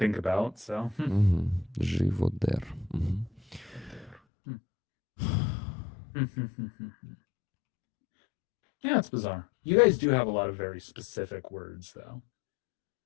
about, so. Живодер. Yeah, it's bizarre. You guys do have a lot of very specific words, though.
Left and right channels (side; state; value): right; drops out; at 4.2 s